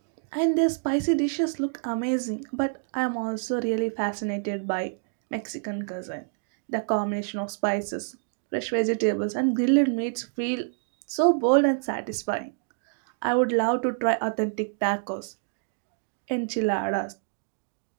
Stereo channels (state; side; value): silent; left; digital silence